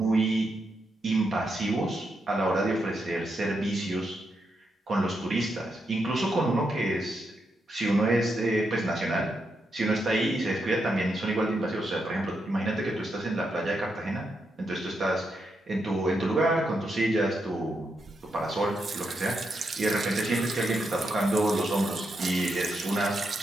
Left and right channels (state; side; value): normal; both; correlation 0.83